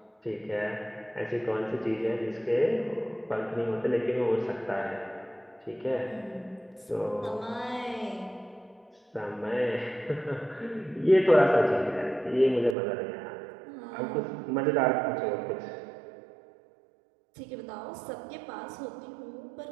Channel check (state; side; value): drops out; left; at 12.8 s